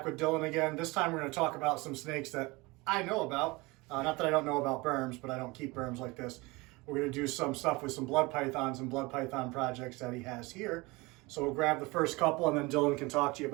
with Dillon again. This time we're going to talk about some snakes that I know about. Not that I don't know about berms, but I don't keep berms like this. We're going to do some stuff with some blood pythons and blood python projects that he has here. So we'll grab the first couple and then Dillon can talk to you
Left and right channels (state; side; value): quieter; left; 23.8 dB